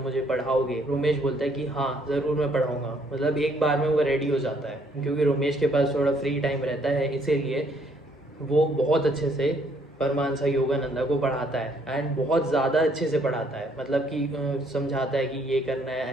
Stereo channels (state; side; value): normal; both; correlation 0.66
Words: पढ़ाओगे। रोमेश बोलता है कि हाँ ज़रूर मैं पढ़ाऊँगा। मतलब एक बार में वो रेडी हो जाता है, क्योंकि रोमेश के पास थोड़ा फ्री टाइम रहता है, इसीलिए वो बहुत अच्छे से परमहंस योगानंदा को पढ़ाता है। एंड बहुत ज़्यादा अच्छे से पढ़ाता है, मतलब कि समझाता है कि ये करना है,